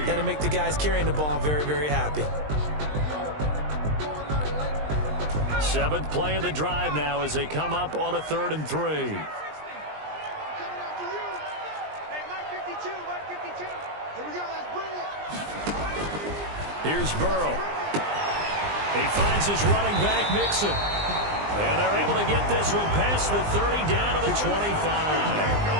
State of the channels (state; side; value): late; left; 20 ms